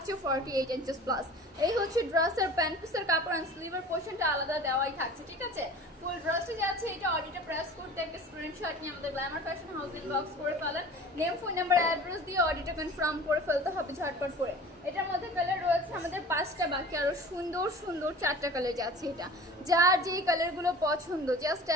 48 ইঞ্চেস প্লাস। এই হচ্ছে ড্রেসের প্যান্ট পিসের কাপড় অ্যান্ড স্লিভের পোর্শনটা আলাদা দেওয়াই থাকছে, ঠিক আছে। ফুল ড্রেসটা যাচ্ছে এটা অডিটে প্রেস করতে একটা স্ক্রিনশট নিয়ে আমাদের গ্ল্যামার ফ্যাশন হাউস ইনবক্স করে ফেলেন, নেম ফোন নাম্বার অ্যাড্রেস দিয়ে অডিটে কনফার্ম করে ফেলতে হবে ঝটপট করে। এটার মধ্যে কালার রয়েছে আমাদের 5টা, বাকি আরো সুন্দর সুন্দর 4টা কালার যাচ্ছে। এটা যার যেই কালারগুলো পছন্দ জাস্ট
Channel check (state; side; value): normal; both; correlation 0.41